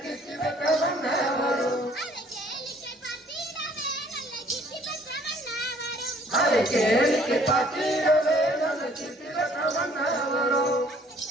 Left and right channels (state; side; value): normal; both; correlation 0.59